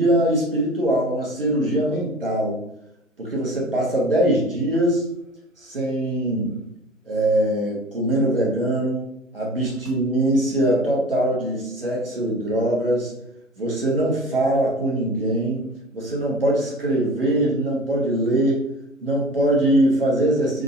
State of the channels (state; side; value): normal; both; correlation 0.41